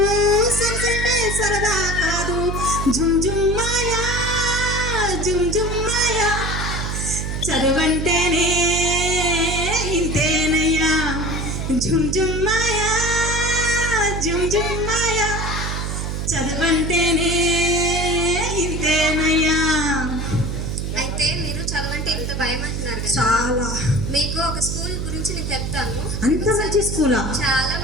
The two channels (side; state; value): right; noise; hum, 3 dB below the sound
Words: సైన్స్ అంటే సరదా కాదు. జుమ్ జుమ్ మాయా, జుమ్ జుమ్ మాయా, చదువంటేనే ఇంతేనయ్యా, జుమ్ జుమ్ మాయా, జుమ్ జుమ్ మాయా, చదువంటేనే భయం అంటున్నారు కదా. చాలా. మీకు ఒక స్కూల్ గురించి నేను చెప్తాను. అంత మంచి స్కూలా? చాలా